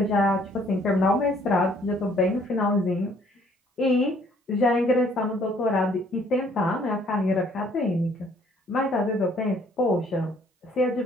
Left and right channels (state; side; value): normal; both; correlation 0.62